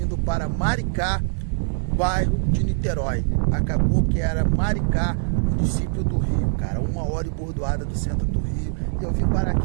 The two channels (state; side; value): silent; left; digital silence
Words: para Maricá, bairro de Niterói. Acabou que era Maricá, município do Rio, cara. 1 hora e bordoada do centro do Rio. E eu vim parar